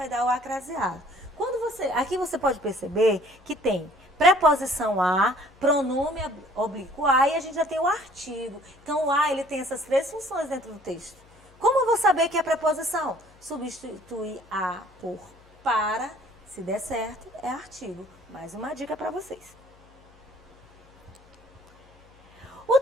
dar o acraseado. Aqui você pode perceber que tem preposição a, pronome oblíquo a, e a gente já tem o artigo. Então, o a, ele tem essas três funções dentro do texto. Como eu vou saber que é preposição? Substituir a por para, se der certo, é artigo. Mais uma dica para vocês. O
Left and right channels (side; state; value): left; noise; hum, 28 dB below the sound